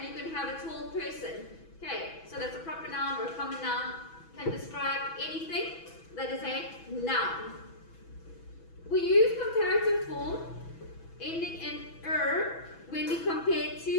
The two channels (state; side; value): late; right; 6.1 ms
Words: you can have a tall person. Okay, so that's a proper noun or a common noun. Can describe anything that is a noun. We use comparative form ending in er when we compare